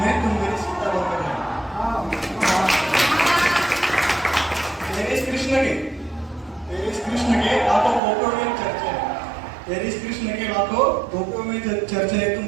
तुम मेरी सीता बनकर रहना। तेरे इस कृष्ण के लाखों गोपियों में चर्चा है, तेरे इस कृष्ण के लाखों गोपियों में चर्चा है, तुम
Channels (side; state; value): left; drops out; at 8.0 s